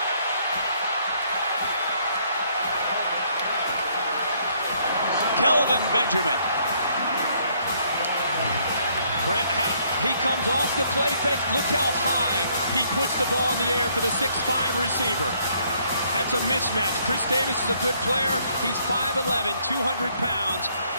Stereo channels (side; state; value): both; inverted; correlation -0.67